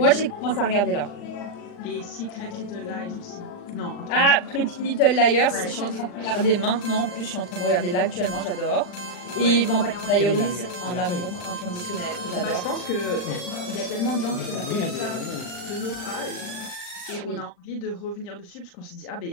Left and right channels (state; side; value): late; right; 40 ms